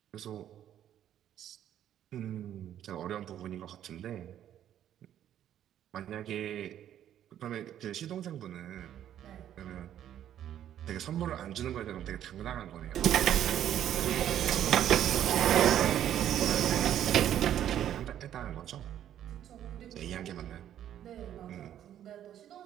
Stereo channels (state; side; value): quieter; left; 10.8 dB